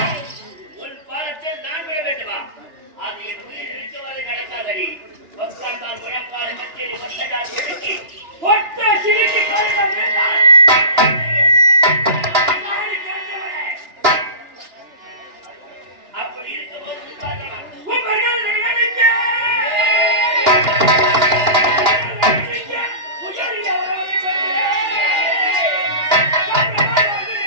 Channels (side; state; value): left; late; 2.9 ms